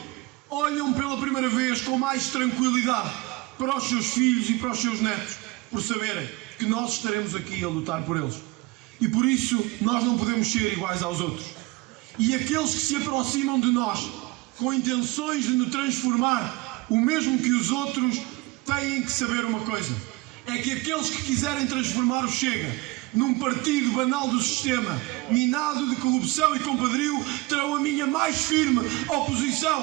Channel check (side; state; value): left; quieter; 21.7 dB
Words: olham pela primeira vez com mais tranquilidade para os seus filhos e para os seus netos, por saberem que nós estaremos aqui a lutar por eles. E por isso nós não podemos ser iguais aos outros. E aqueles que se aproximam de nós com intenções de nos transformar, o mesmo que os outros, têm que saber uma coisa: é que aqueles que quiserem transformar o Chega num partido banal do sistema, minado de corrupção e compadrio, terão a minha mais firme